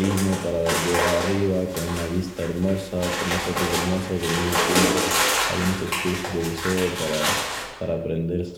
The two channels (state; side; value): identical; both; correlation 1.00